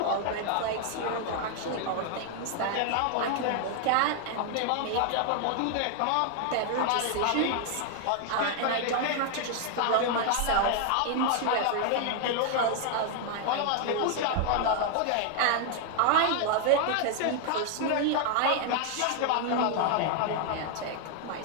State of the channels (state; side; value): different; both; correlation 0.00